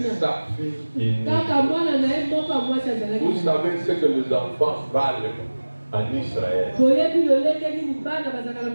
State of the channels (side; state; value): both; inverted; correlation -1.00